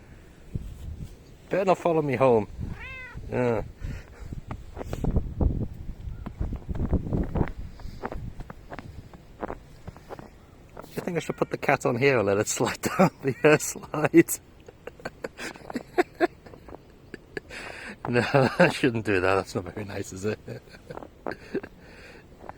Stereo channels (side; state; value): both; identical; correlation 1.00